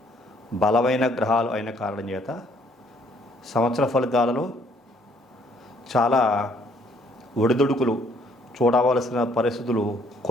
బలమైన గ్రహాలు అయిన కారణం చేత సంవత్సర ఫలితాలలో చాలా ఒడిదుడుకులు చూడవలసిన పరిస్థితులు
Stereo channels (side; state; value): both; normal; correlation 0.64